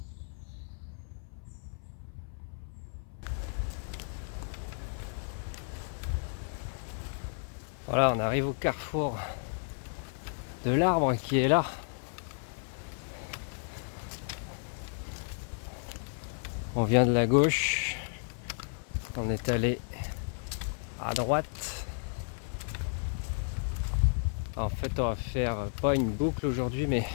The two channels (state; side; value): silent; right; 56 dB below the other